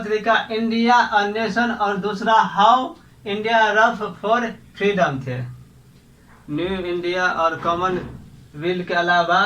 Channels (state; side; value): identical; both; correlation 1.00